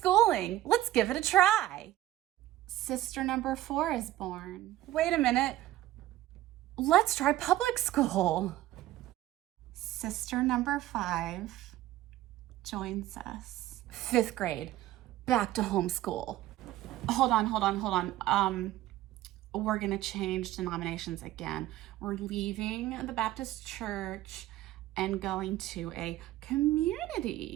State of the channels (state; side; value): quieter; left; 14.9 dB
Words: Let's give it a try. Sister number 4 is born. Wait a minute. Let's try public school. Sister number 5 joins us. 5th grade. Back to homeschool. Hold on. We're gonna change denominations again. We're leaving the Baptist church and going to a